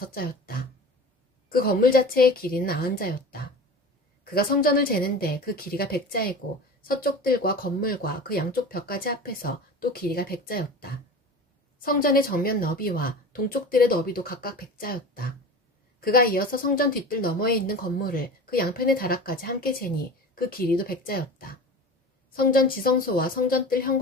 그 건물 자체의 길이는 90자였다. 그가 성전을 재는데 그 길이가 100자이고 서쪽 뜰과 건물과 그 양쪽 벽까지 합해서 또 길이가 100자였다. 성전의 정면 너비와 동쪽 뜰의 너비도 각각 100자였다. 그가 이어서 성전 뒷뜰 너머에 있는 건물을 그 양편의 다락까지 함께 재니 그 길이도 100자였다. 성전 지성소와 성전 뜰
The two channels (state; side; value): normal; both; correlation 0.34